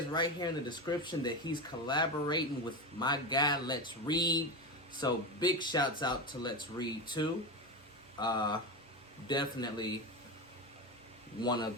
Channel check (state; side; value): normal; both; correlation 0.19